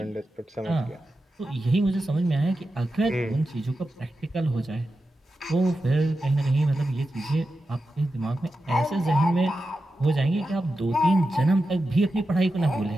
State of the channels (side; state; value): both; normal; correlation 0.90